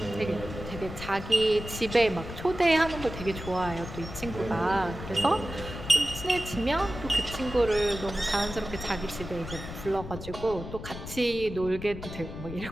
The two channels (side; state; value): left; noise; rumble, 10 dB below the sound